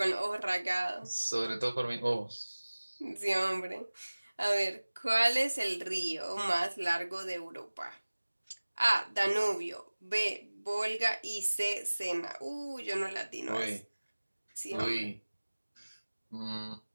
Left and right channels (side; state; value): both; inverted; correlation -1.00